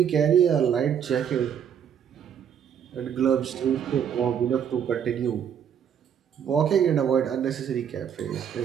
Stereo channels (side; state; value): left; quieter; 8.5 dB